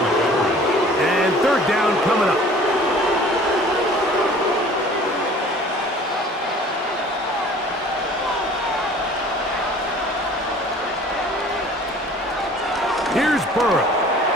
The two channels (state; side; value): normal; both; correlation 0.49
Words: And 3rd down coming up. Here's Burrow.